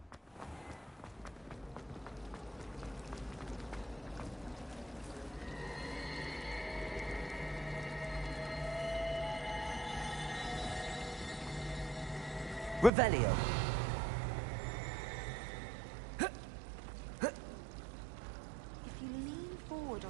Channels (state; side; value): drops out; left; at 12.9 s